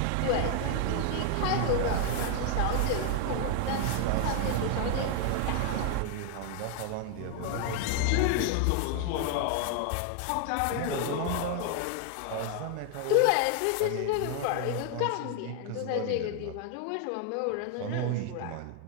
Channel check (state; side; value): different; both; correlation 0.00